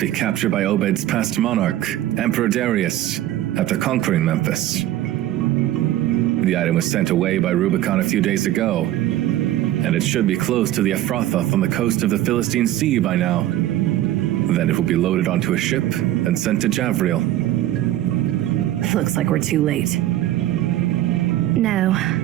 captured by Obed's past monarch, Emperor Darius, after conquering Memphis. The item was sent away by Rubicon a few days ago, and it should be close to the Ephrathoth on the coast of the Philistine Sea by now. Then it will be loaded onto a ship and sent to Javriel. Looks like we're too late. No,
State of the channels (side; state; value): left; quieter; 13.8 dB